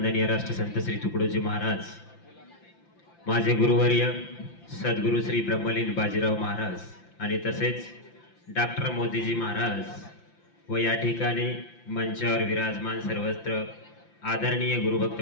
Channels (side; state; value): right; late; 5.8 ms